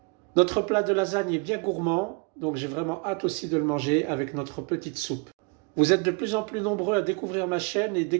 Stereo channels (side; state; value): left; quieter; 32.3 dB